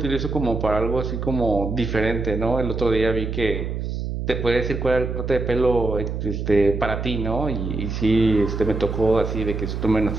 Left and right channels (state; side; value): noise; right; hum, 4 dB below the sound